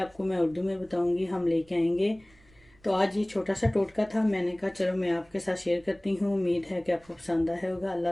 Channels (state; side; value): noise; right; rumble, 30 dB below the sound